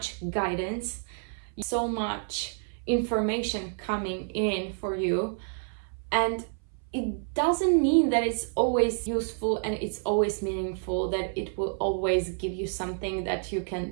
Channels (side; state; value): left; silent; 59 dB below the other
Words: guidance, so much information coming in for you. And it doesn't mean that it's always useful and it's always meaningful, that it will always give you something that you can